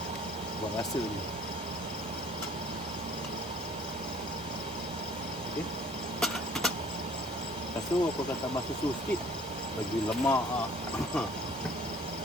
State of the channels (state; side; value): normal; both; correlation 0.54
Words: Buat rasa je. Okay. Lepas tu aku akan tambah susu sikit. Bagi lemak lah.